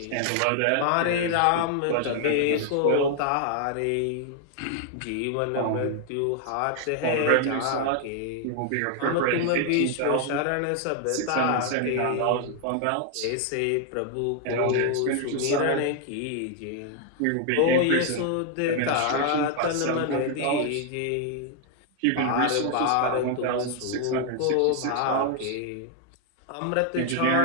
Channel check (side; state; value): both; different; correlation 0.00